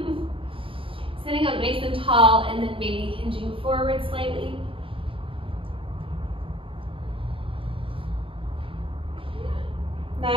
Sitting up nice and tall and then maybe hinging forward slightly.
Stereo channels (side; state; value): left; late; 0.26 ms